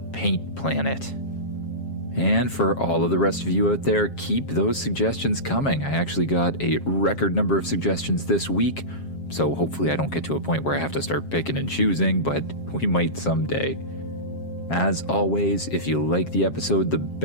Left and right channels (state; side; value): late; right; 7.4 ms